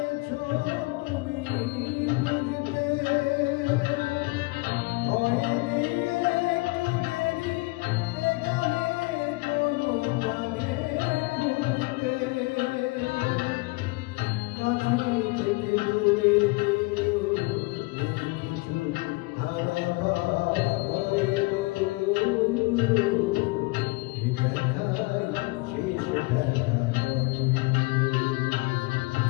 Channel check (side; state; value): right; quieter; 24.5 dB